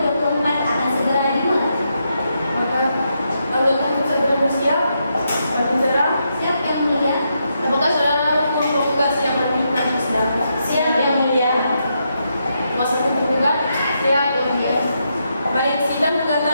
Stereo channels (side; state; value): both; inverted; correlation -0.81